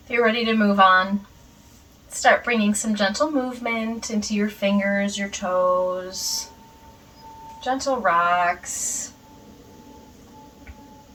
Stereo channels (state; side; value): identical; both; correlation 1.00